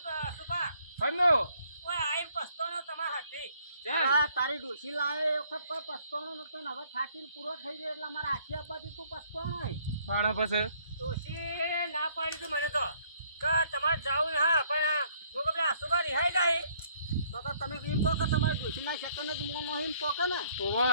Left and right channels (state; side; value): inverted; both; correlation -0.64